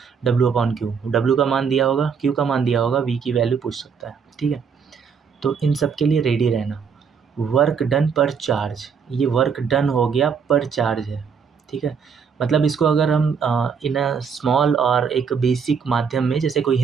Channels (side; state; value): left; quieter; 6.3 dB